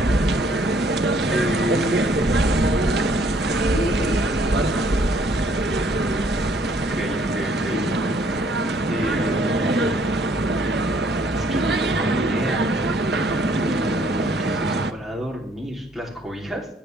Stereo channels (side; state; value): both; normal; correlation 0.63